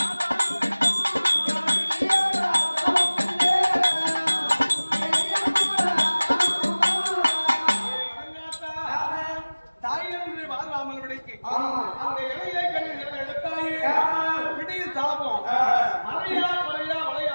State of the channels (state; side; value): inverted; both; correlation -1.00